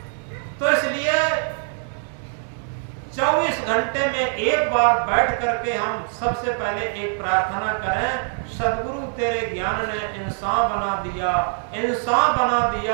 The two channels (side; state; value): left; silent; 55 dB below the other